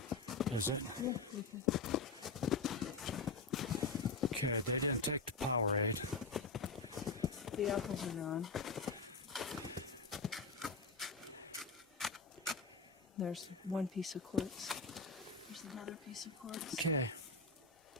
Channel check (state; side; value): quieter; right; 3.9 dB